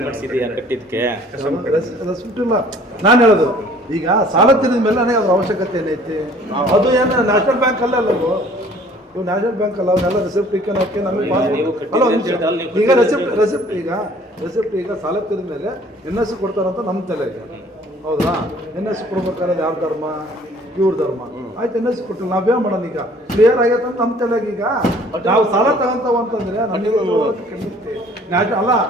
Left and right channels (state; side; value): normal; both; correlation 0.54